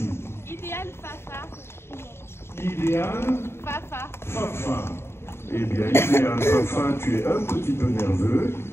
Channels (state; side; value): late; right; 0.12 ms